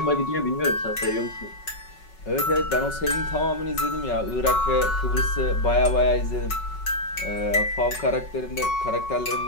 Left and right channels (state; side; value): late; right; 5.4 ms